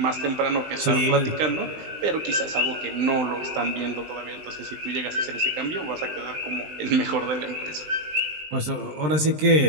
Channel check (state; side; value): late; left; 20 ms